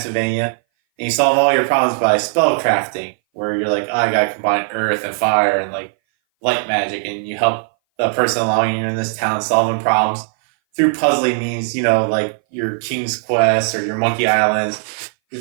and you solve all your problems by spell crafting, where you're like, oh, I gotta combine earth and fire and like light magic, and you help the person along you in this town solving problems through puzzling means, like your King's Quest or your Monkey Islands,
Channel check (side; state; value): left; silent; 60 dB below the other